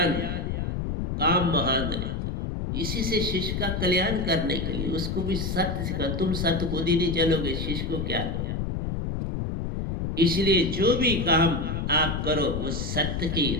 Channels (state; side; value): noise; left; rumble, 2 dB below the sound